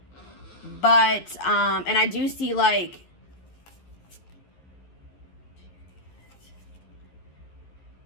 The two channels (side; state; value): right; late; 11 ms